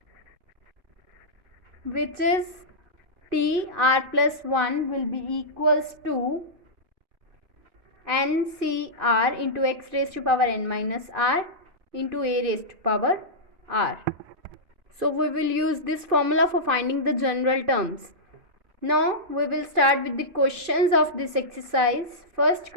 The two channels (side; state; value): left; late; 2.5 ms